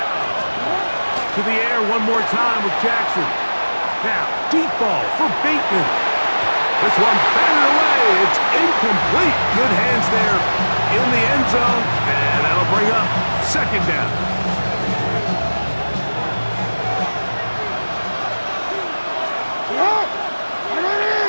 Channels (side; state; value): both; inverted; correlation -1.00